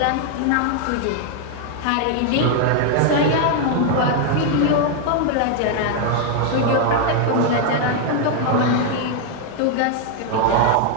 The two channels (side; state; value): both; different; correlation 0.00